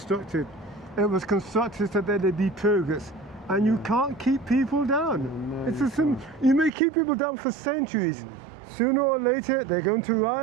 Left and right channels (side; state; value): left; drops out; at 6.7 s